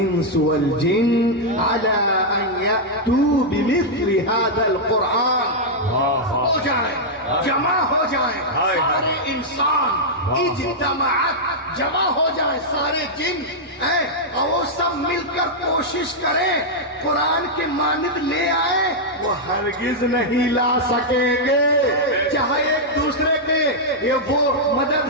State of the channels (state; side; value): normal; both; correlation -0.05